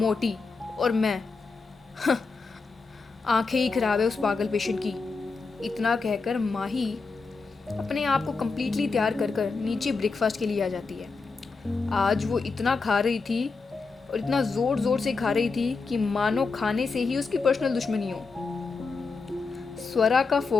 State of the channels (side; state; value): right; quieter; 4.4 dB